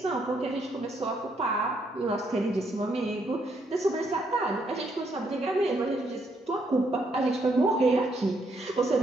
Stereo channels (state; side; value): normal; both; correlation 0.75